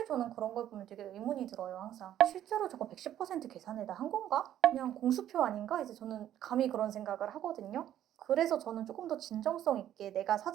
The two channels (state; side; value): quieter; left; 11.5 dB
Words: 저는 그런 걸 보면 되게 의문이 들어요. 항상 실제로 저거 110% 계산을 다 한 건가? 그냥 공수표 아닌가? 이제 저는 감히 그런 생각을 하거든요. 그래서 저는 조금 더 진정성 있게 내가